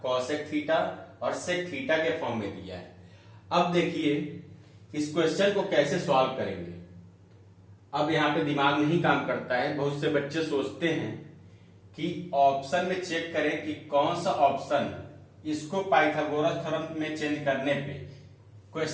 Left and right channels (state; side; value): identical; both; correlation 1.00